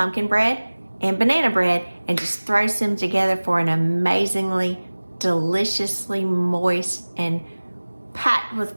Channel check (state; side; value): inverted; both; correlation -1.00